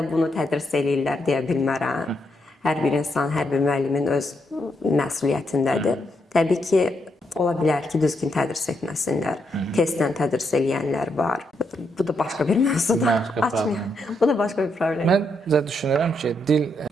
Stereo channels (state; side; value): normal; both; correlation 0.79